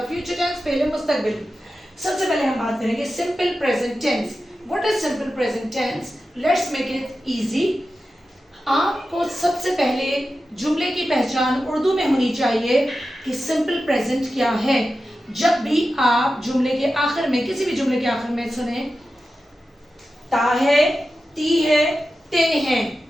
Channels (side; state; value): both; normal; correlation 0.92